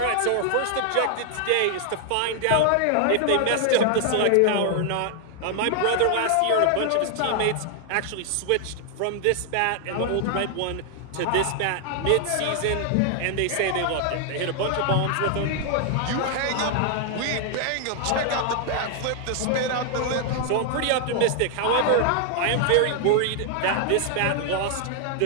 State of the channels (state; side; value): different; both; correlation 0.00